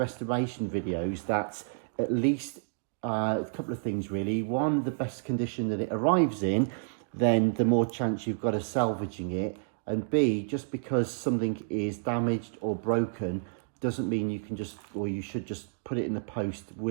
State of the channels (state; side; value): silent; left; digital silence